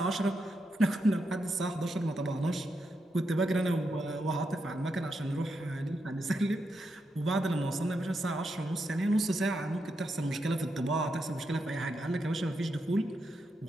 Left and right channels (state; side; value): normal; both; correlation 0.84